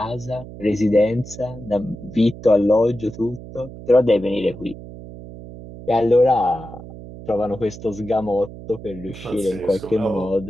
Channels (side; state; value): right; noise; hum, 14 dB below the sound